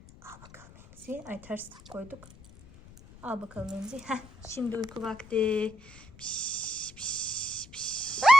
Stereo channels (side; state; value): left; noise; rumble, 21 dB below the sound